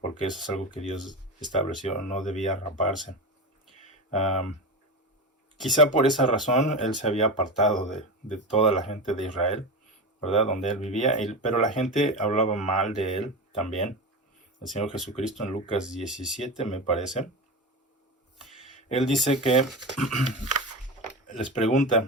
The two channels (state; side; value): normal; both; correlation 0.22